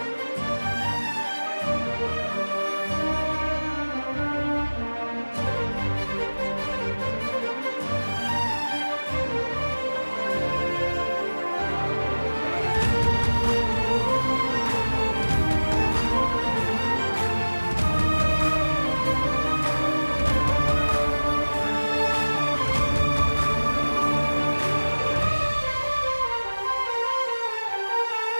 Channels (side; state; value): both; inverted; correlation -1.00